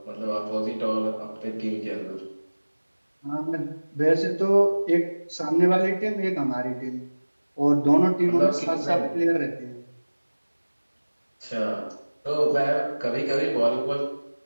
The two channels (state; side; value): inverted; both; correlation -1.00